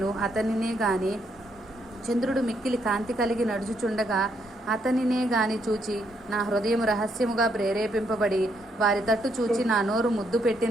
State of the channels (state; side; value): normal; both; correlation 0.75